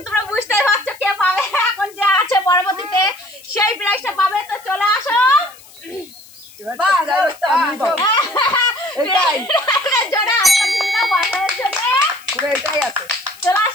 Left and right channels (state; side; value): noise; left; hiss, 23 dB below the sound